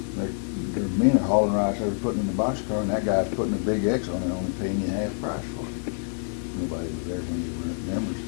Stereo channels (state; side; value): silent; right; digital silence